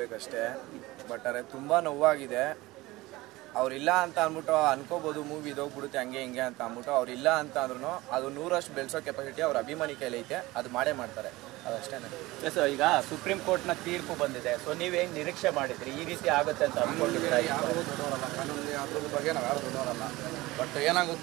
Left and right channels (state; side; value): quieter; left; 19.8 dB